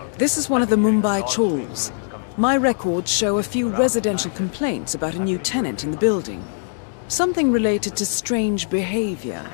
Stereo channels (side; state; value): right; silent; digital silence